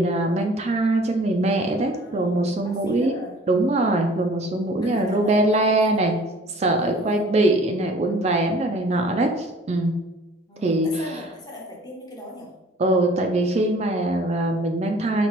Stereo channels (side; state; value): both; normal; correlation 0.51